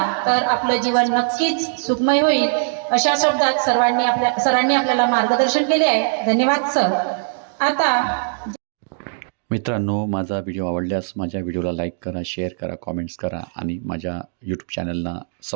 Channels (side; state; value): left; silent; digital silence